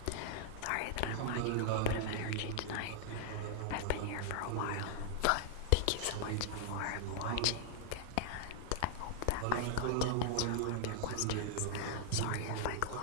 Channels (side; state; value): both; different; correlation -0.01